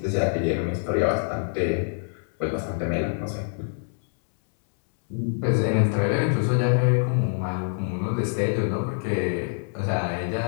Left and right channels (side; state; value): right; silent; 62 dB below the other